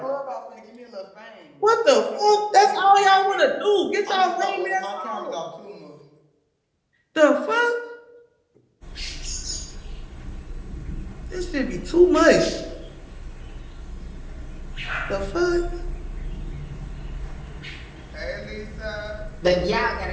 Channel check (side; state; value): both; identical; correlation 1.00